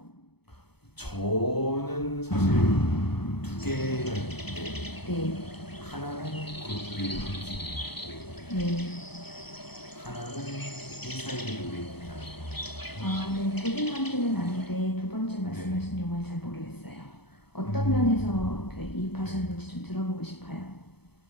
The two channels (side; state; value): right; late; 0.97 ms